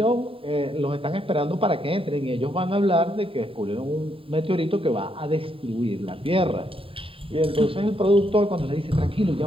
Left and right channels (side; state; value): left; late; 0.27 ms